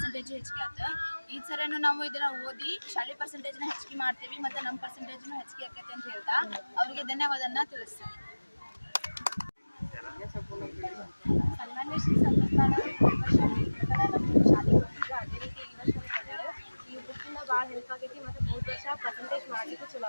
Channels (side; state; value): both; inverted; correlation -1.00